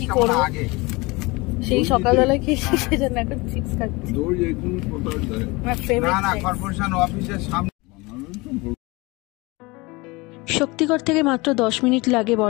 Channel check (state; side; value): quieter; right; 24.4 dB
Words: করব, সেই সকালবেলা খেয়েছি সেজন্য এখন চিপস খাচ্ছি। না না, কর্পোরেশন অফিসের সামনে। শক্তিগড় থেকে মাত্র 10 মিনিট লাগে